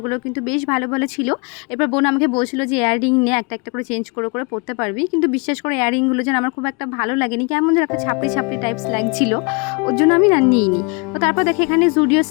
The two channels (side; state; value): right; quieter; 31.4 dB